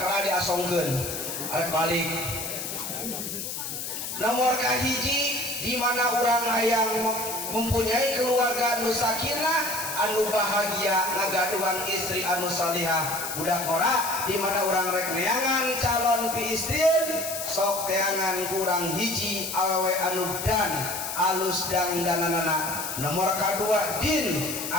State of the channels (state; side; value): noise; left; hiss, 5 dB below the sound